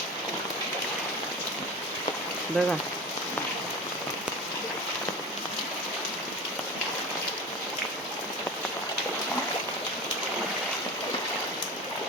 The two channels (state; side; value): normal; both; correlation 0.31